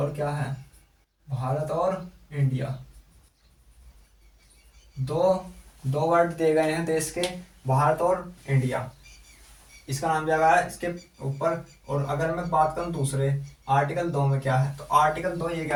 क्या है, भारत और इंडिया। दो दो वर्ड दिए गए हैं देश के, भारत और इंडिया। इसका नाम दिया गया है इसके ऊपर। और अगर मैं बात करूं दूसरे आर्टिकल 2 में क्या है, तो आर्टिकल 2 ये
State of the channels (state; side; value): identical; both; correlation 1.00